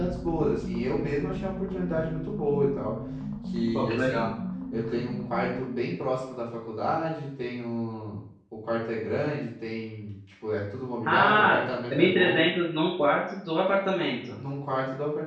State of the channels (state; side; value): identical; both; correlation 1.00